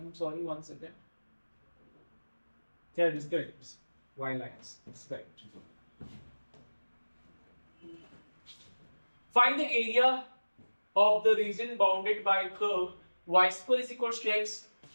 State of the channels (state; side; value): inverted; both; correlation -1.00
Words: sorry, one second. Yeah, it is correct. It's Y lines, it's correct. Find the area of the region bounded by curve y square is equals to x